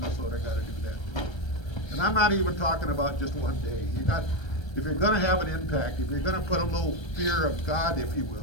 gotta do that too. And I'm not even talking about just one day. If you're gonna have an impact, if you're gonna put a little fear of God, if you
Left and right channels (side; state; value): right; late; 1.3 ms